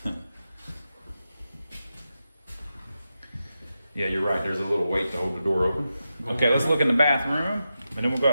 Yeah, you're right. There's a little weight to hold the door open. Okay, let's look in the bathroom, and then we'll go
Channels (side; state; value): both; inverted; correlation -0.90